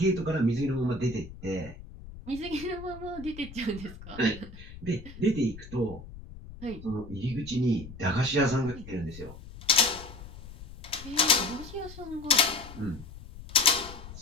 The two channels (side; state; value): left; noise; rumble, 15 dB below the sound